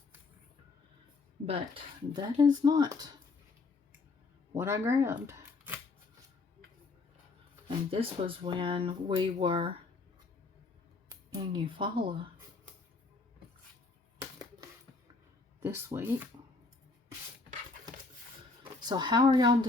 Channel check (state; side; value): quieter; right; 3.9 dB